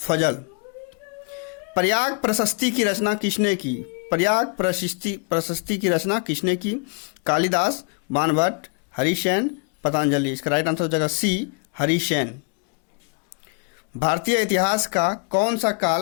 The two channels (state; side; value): quieter; right; 36.2 dB